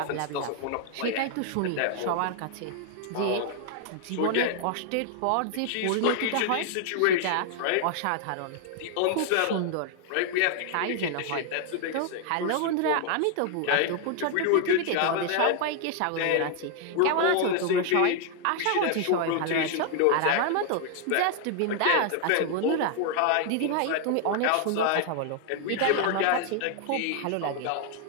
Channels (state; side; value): different; both; correlation 0.00